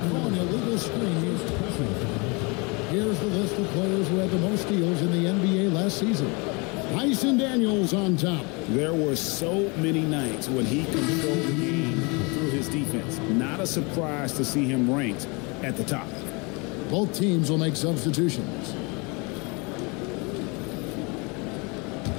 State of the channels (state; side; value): quieter; right; 29.7 dB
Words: an illegal screen. Here's the list of players who had the most steals in the NBA last season. Tyson Daniels on top. There were so many nights when he controlled the game through his defense. Not a surprise to see him ranked at the top. Both teams will make substitutions.